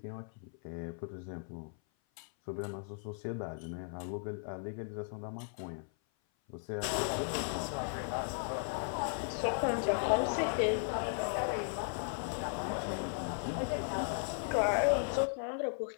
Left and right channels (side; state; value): right; silent; 53 dB below the other